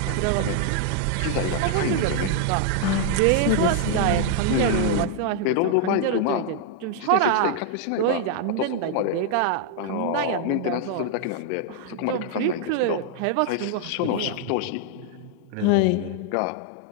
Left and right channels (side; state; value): both; different; correlation 0.00